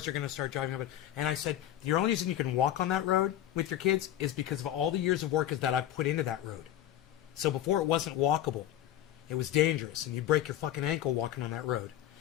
are going to start driving up it. And I said, the only reason you can walk on that road with your kids is because of all the years of work that I've put into that road. So before it wasn't walkable. It was dangerous, and you'd break your fucking ankle walking on that road.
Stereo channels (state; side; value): quieter; right; 12.2 dB